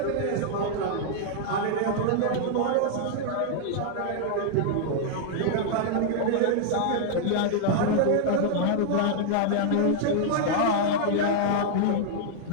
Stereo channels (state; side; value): different; both; correlation -0.01